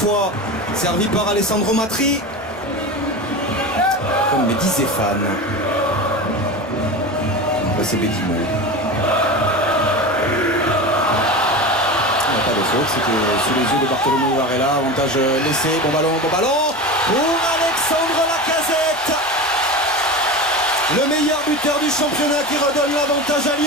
servi par Alessandro Matri. Comme me disait Fan. C'est Bedimo. C'était sous les yeux de Bartolomeo Varela. Avantage laissé, bon ballon pour Alexandre Lacazette, le meilleur buteur du championnat qui redonne l'avantage à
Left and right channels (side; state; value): both; normal; correlation 0.27